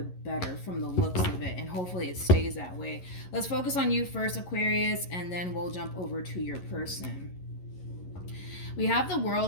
better from the looks of it, and hopefully it stays that way. Let's focus on you first, Aquarius, and then we'll jump over to your person. We have the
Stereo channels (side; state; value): right; late; 11 ms